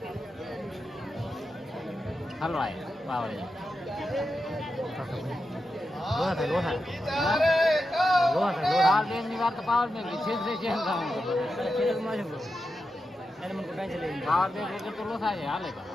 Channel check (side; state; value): both; normal; correlation 0.89